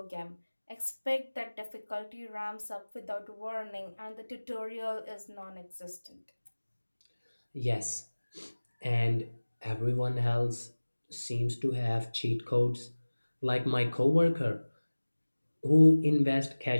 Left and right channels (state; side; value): inverted; both; correlation -1.00